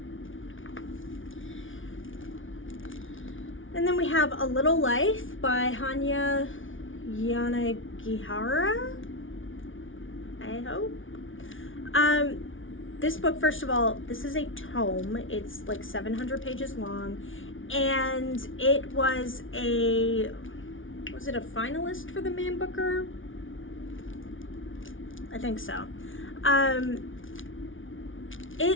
And then we have A Little Life by Hanya Yanagihara, I hope. This book, first of all, this is a tome. It's like 700 pages long, and it was it a finalist for the Man Booker? I think so.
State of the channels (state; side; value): late; right; 0.57 ms